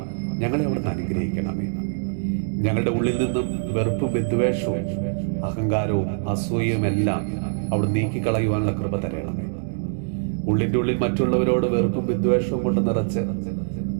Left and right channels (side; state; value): left; silent; digital silence